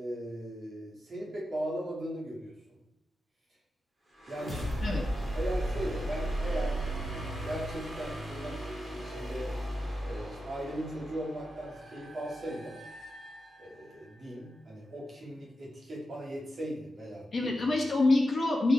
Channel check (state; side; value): normal; both; correlation 0.90